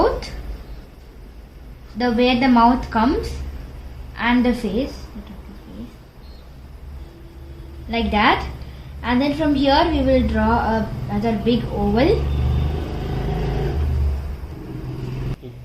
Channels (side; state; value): both; identical; correlation 1.00